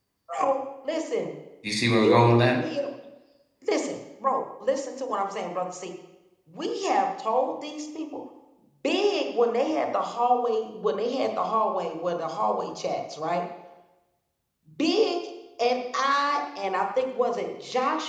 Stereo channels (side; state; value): both; identical; correlation 1.00